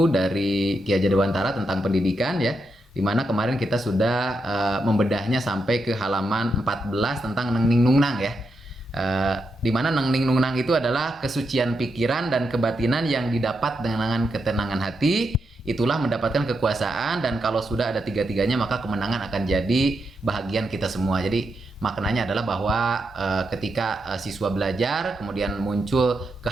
dari Ki Hajar Dewantara tentang pendidikan ya. Dimana kemarin kita sudah membedahnya sampai ke halaman 14 tentang Neng Ning Nung Nang ya. Di mana Neng Ning Nung Nang itu adalah kesucian pikiran dan kebatinan yang didapat dengan ketenangan hati, itulah mendapatkan kekuasaan, dan kalau sudah ada tiga-tiganya maka kemenangan akan jadi bahagian kita semua. Jadi maknanya adalah bahwa ketika siswa belajar kemudian muncul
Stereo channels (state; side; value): normal; both; correlation 0.84